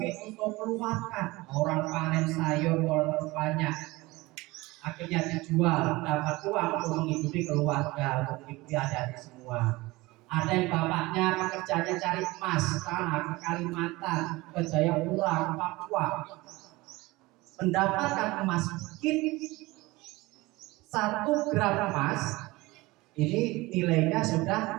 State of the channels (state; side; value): quieter; left; 21.3 dB